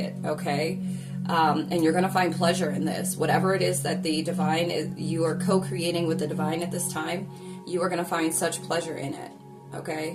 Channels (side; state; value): both; identical; correlation 1.00